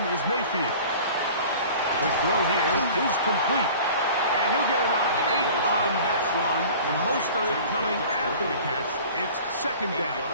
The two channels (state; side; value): inverted; both; correlation -0.43